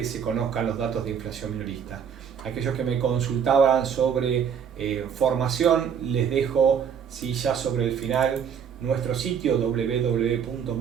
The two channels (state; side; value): quieter; left; 7.6 dB